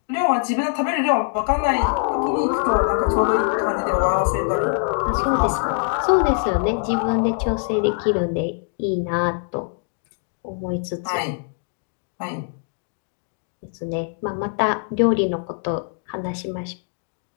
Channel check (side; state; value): right; silent; 63 dB below the other